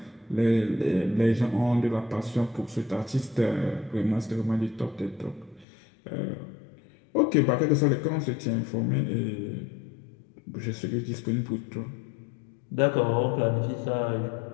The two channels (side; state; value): right; drops out; at 5.7 s